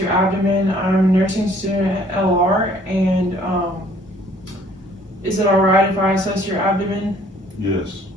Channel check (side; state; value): both; normal; correlation 0.58